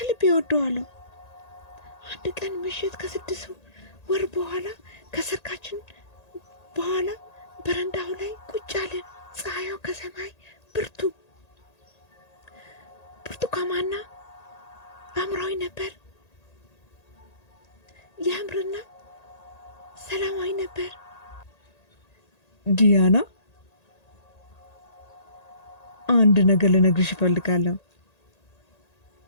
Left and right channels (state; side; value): late; right; 1.8 ms